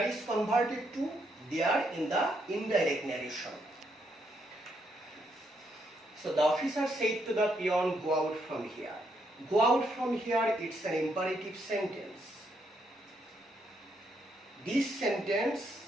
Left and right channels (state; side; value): normal; both; correlation 0.76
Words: is converted to there in the indirect narration. So the officer said to the peon, go out from here. Go out from here, it's an imperative sentence. This sentence